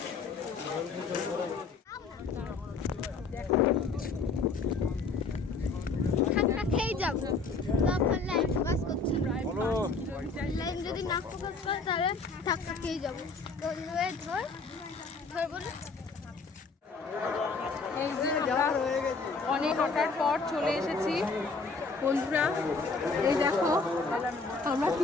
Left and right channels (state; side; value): quieter; right; 4.2 dB